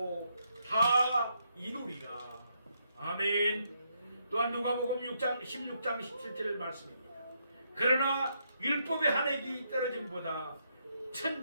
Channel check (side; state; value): both; inverted; correlation -0.77